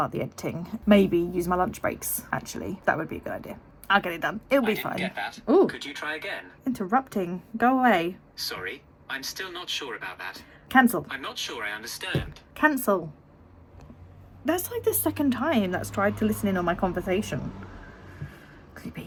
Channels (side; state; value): both; identical; correlation 1.00